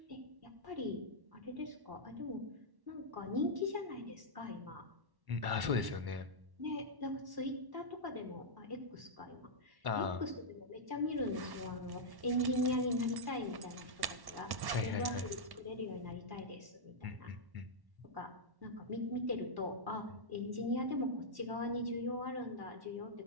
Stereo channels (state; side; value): late; left; 1.1 ms